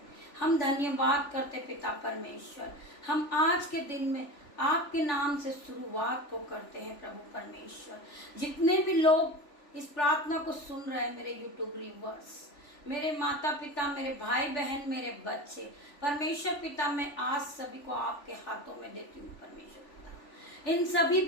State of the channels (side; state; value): right; late; 3.4 ms